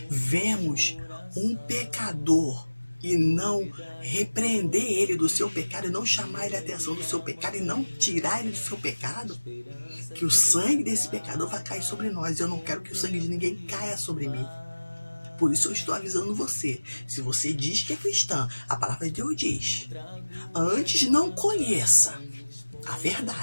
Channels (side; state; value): both; inverted; correlation -1.00